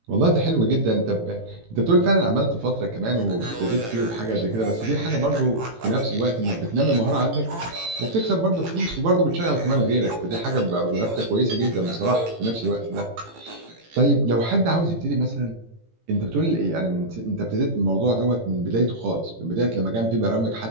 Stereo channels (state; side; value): late; left; 18 ms